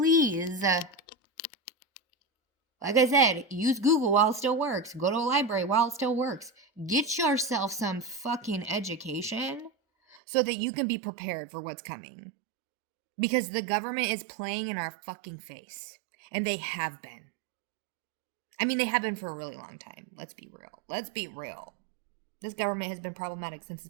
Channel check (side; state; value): left; drops out; at 10.2 s